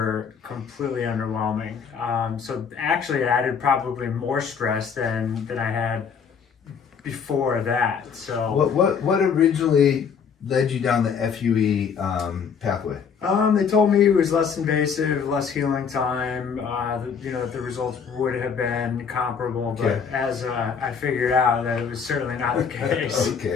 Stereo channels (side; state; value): right; quieter; 6.5 dB